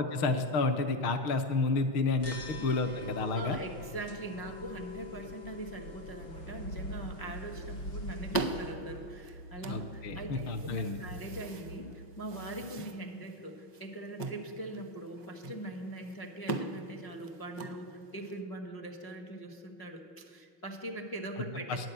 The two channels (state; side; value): late; right; 5.6 ms